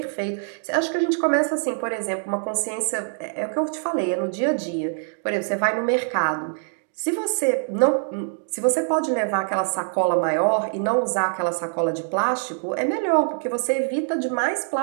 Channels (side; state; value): left; silent; digital silence